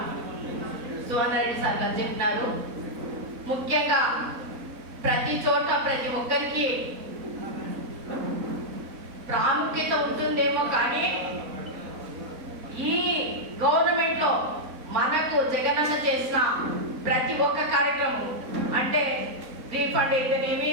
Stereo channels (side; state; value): left; late; 4.0 ms